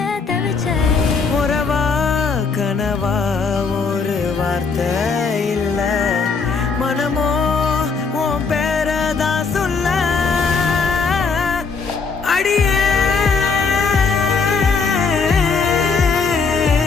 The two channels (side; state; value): right; quieter; 4.9 dB